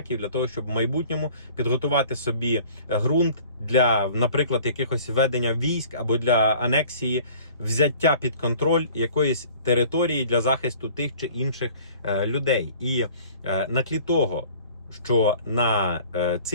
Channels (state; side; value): inverted; both; correlation -0.50